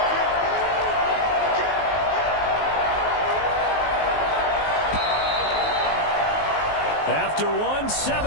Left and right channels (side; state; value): right; late; 19 ms